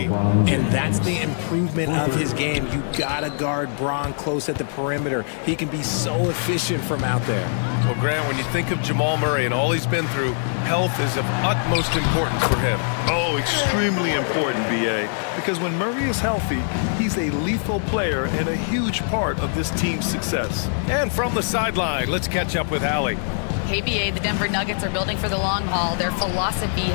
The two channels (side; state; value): right; silent; 59 dB below the other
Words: And that's the improvement of his game. You gotta guard Bron close at the perimeter. He can be so efficient from out there. Well, Grant, when you think of Jamal Murray and all he's been through, health is of utmost importance for him. Oh, extremely important, BA. Because when Murray is healthy, he's a lethal player and a huge part of this team's success. And from the sideline, let's catch up with Allie. KBA, the Denver Nuggets are building for the long haul. Their philosophy